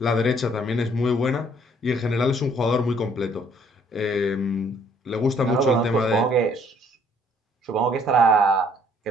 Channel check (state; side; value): normal; both; correlation 0.62